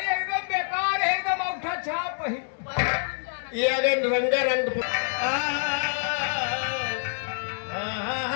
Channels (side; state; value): right; silent; digital silence